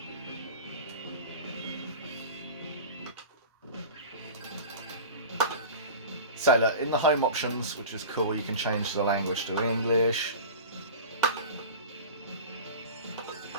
So look, in the home options, which is cool, you can change the language to English.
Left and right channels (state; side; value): inverted; both; correlation -0.34